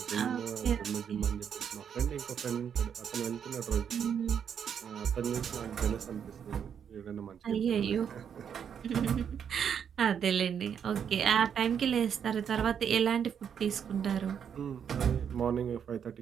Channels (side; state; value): left; quieter; 7.9 dB